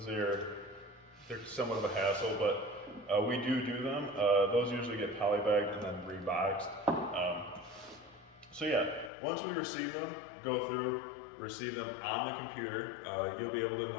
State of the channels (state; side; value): drops out; right; at 9.1 s